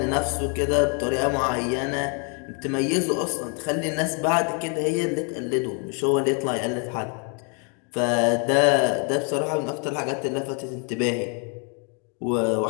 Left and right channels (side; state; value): right; quieter; 37.8 dB